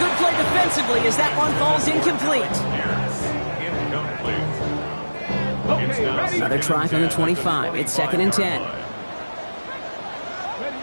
play defensively as that one falls incomplete. Okay, ready. Another try from the 25. It's 2nd and 10.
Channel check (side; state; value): both; inverted; correlation -1.00